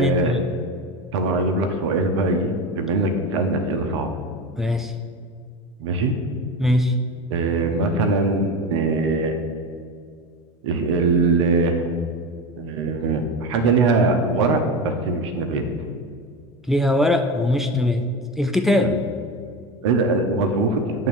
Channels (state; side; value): normal; both; correlation 0.22